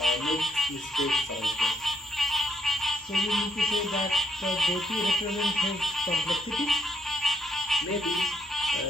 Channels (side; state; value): both; normal; correlation 0.75